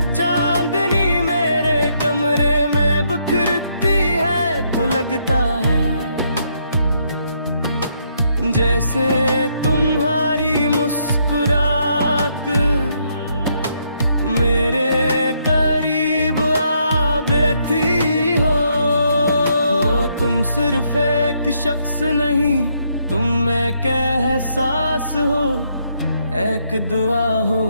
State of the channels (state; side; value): inverted; both; correlation -0.74